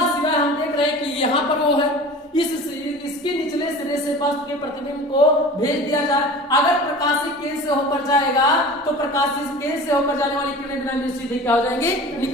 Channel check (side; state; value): both; normal; correlation 0.38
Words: सिरा हम देख रहे हैं कि यहाँ पर वो है, इसके निचले सिरे से वस्तु के प्रतिबिंब को भेज दिया जाए। अगर प्रकाशिक केंद्र से होकर जाएगा तो प्रकाशिक केंद्र से होकर जाने वाली किरणें बिना सीधे क्या हो जाएंगी